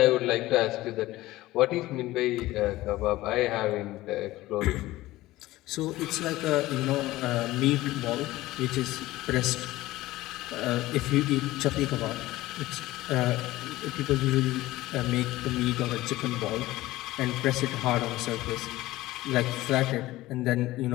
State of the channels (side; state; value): right; quieter; 17.4 dB